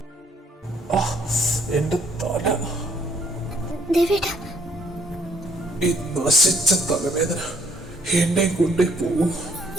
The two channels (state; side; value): normal; both; correlation 0.65